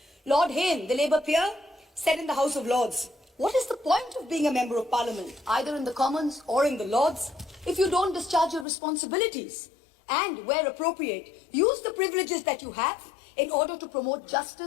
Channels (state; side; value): drops out; right; at 8.7 s